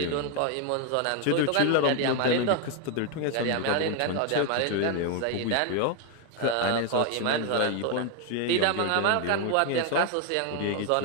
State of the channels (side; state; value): both; different; correlation 0.01